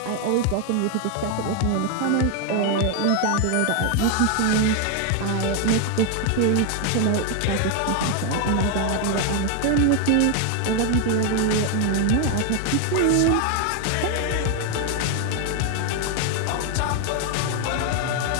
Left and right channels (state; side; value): different; both; correlation 0.01